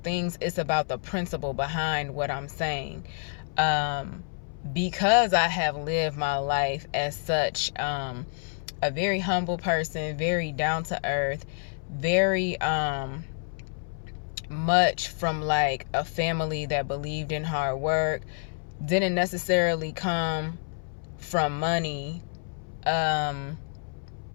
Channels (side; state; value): right; silent; 59 dB below the other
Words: It's about the principle behind what I'm saying. Because I have lived my life as such, a very humble person, very down to earth, very much from like a family that believed in hard work, didn't necessarily come from money. I've